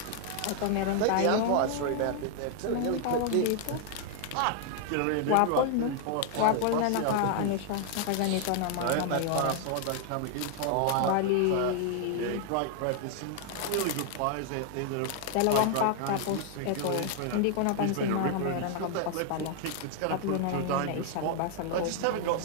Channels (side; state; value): both; different; correlation -0.01